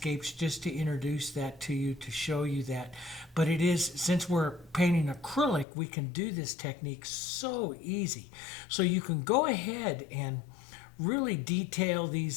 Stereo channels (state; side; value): drops out; right; at 5.7 s